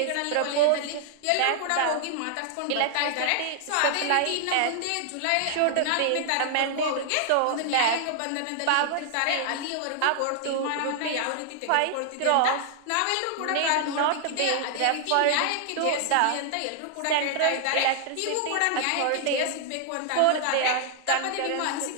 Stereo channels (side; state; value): both; different; correlation 0.00